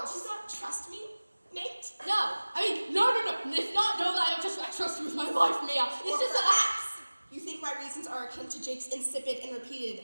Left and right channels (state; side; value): inverted; both; correlation -1.00